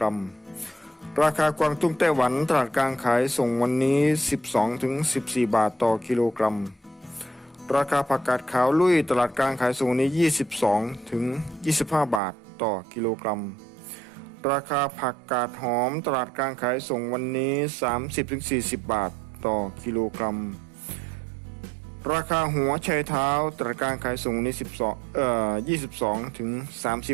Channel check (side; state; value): left; drops out; at 12.2 s